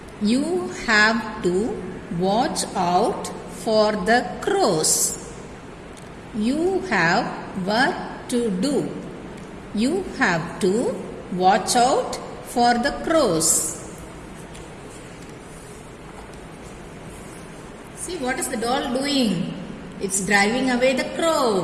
You have to watch out for the crows. You have work to do. You have to watch out for the crows. See, what is the doll doing? It's driving away the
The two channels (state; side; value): identical; both; correlation 1.00